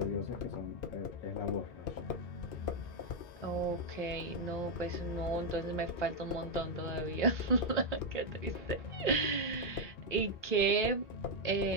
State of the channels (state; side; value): late; right; 2.5 ms